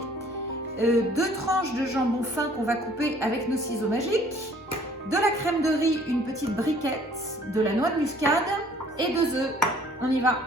2 tranches de jambon fin qu'on va couper avec nos ciseaux magiques, de la crème de riz, une petite briquette, de la noix de muscade et 2 œufs. On y va.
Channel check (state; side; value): normal; both; correlation 0.57